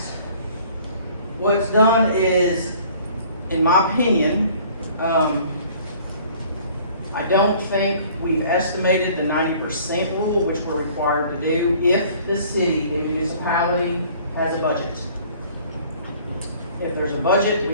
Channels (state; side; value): inverted; both; correlation -0.53